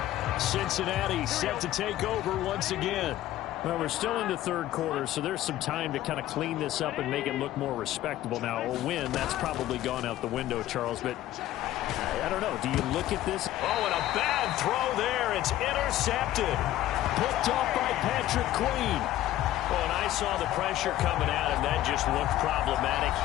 Cincinnati set to take over once again. Well, we're still in the third quarter, so there's some time to kind of clean this up and make it look more respectable. Now, a win, that's probably gone out the window, Charles, but I don't know. Do you look at this? Oh, and a bad throw there. It's intercepted. Picked off by Patrick Queen. Oh, and I saw the pressure coming at him. That just looked problematic.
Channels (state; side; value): quieter; right; 14.0 dB